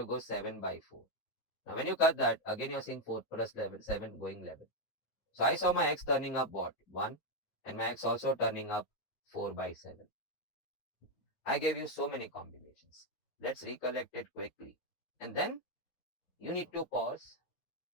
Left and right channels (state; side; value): late; right; 9.3 ms